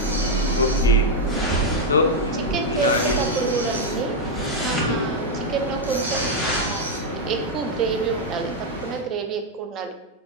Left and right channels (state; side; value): normal; both; correlation 0.01